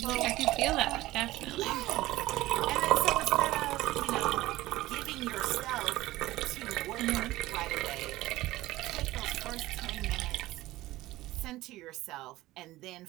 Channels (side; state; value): left; quieter; 17.3 dB